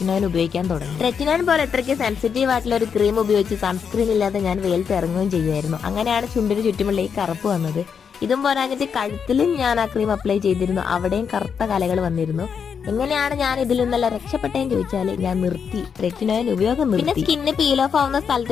ഉപയോഗിക്കാൻ തുടങ്ങി. ട്രെറ്റിനോൻ പോലെ ഇത്രയ്ക്ക് സെൻസിറ്റീവ് ആയിട്ടുള്ള ഒരു ക്രീം ഉപയോഗിച്ച് സൺസ്ക്രീൻ ഇല്ലാതെ ഞാൻ വെയിലത്ത് ഇറങ്ങുകയും ചെയ്യുമായിരുന്നു. അങ്ങനെയാണ് ചുണ്ടിന് ചുറ്റുമുള്ള ഈ കറുപ്പ് വന്നത്. ഇതും പോരാഞ്ഞിട്ട് കഴുത്തിലും ഞാൻ ആ ക്രീം അപ്ലൈ ചെയ്തിരുന്നു. അവിടെയും കറുത്ത കലകൾ വന്നിരുന്നു. എങ്ങനെയാണ് ഞാൻ ഇതിൽ നിന്നെല്ലാം രക്ഷപ്പെട്ടെന്ന് ചോദിച്ചാല് ഞാൻ നിർത്തി, ട്രെറ്റിനോൻ ഉപയോഗം നിർത്തി. പിന്നെ സ്കിന്ന് പീൽ ഓഫ് ആവുന്ന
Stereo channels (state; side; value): quieter; right; 6.8 dB